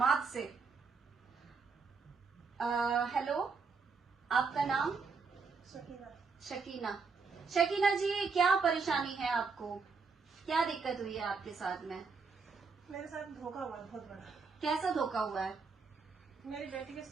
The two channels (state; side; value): quieter; left; 4.9 dB